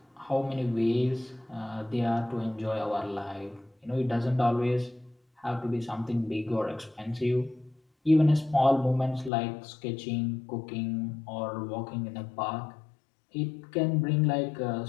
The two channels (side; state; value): right; drops out; at 9.3 s